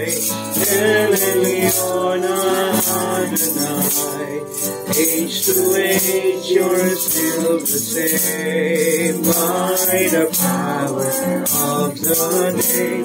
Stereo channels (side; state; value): both; identical; correlation 1.00